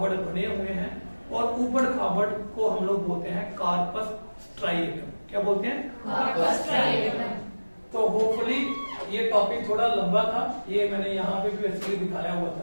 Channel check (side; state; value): both; inverted; correlation -1.00